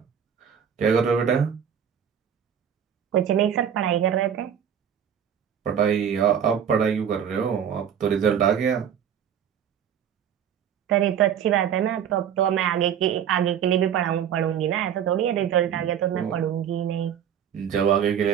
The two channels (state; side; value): quieter; left; 8.8 dB